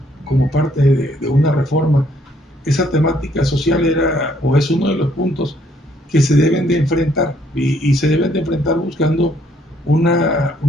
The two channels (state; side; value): normal; both; correlation 0.67